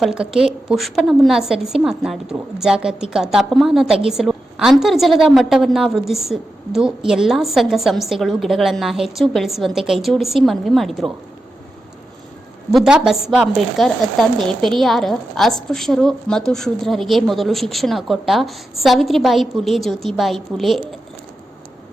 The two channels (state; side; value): normal; both; correlation 0.90